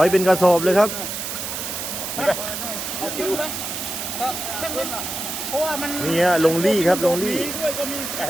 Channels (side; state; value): right; noise; hiss, 5 dB below the sound